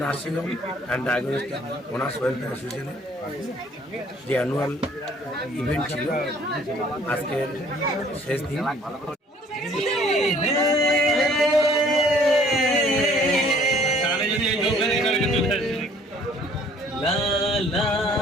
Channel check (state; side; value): normal; both; correlation 0.57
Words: nursing home and diagnostic owners welfare অ্যাসোসিয়েশনের যে অ্যানুয়াল ইভেন্ট ছিল, আজকের শেষ দিন।